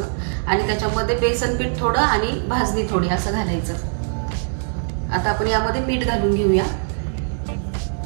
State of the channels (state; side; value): silent; left; digital silence